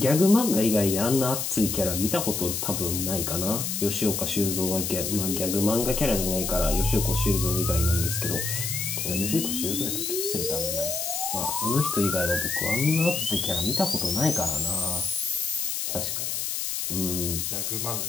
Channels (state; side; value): noise; left; hiss, 2 dB below the sound